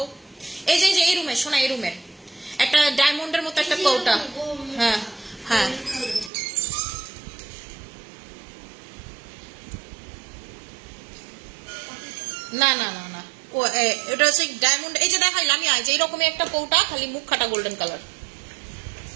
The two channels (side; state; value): left; drops out; at 6.3 s